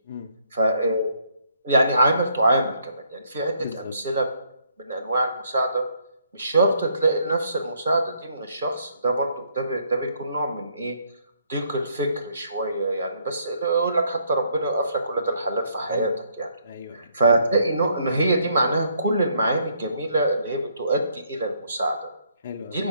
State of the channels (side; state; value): both; inverted; correlation -0.69